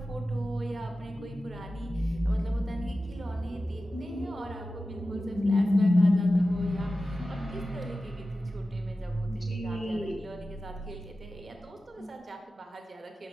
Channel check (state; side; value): normal; both; correlation 0.94